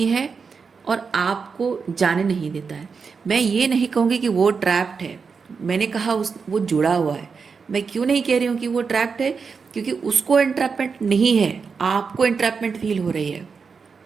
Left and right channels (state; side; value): quieter; left; 5.4 dB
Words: है और आपको जाने नहीं देता है। मैं ये नहीं कहूँगी कि वो ट्रैप्ड है, मैंने कहा वो जुड़ा हुआ है। मैं क्यों नहीं कह रही हूँ कि वो ट्रैप्ड है, क्योंकि उसको एंट्रैपमेंट नहीं है, आपको एंट्रैपमेंट फील हो रही